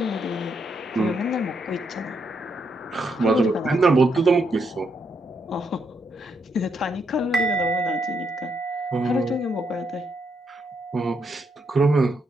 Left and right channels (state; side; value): normal; both; correlation 0.78